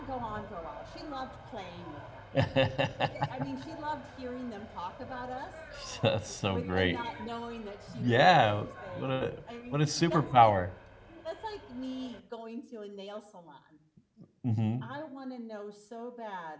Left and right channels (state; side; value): identical; both; correlation 1.00